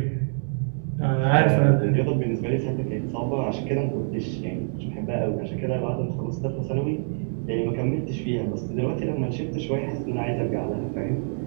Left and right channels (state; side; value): silent; left; digital silence